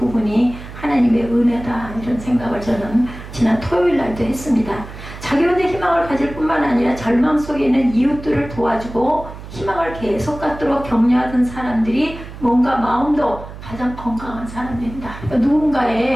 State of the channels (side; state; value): right; noise; hum, 13 dB below the sound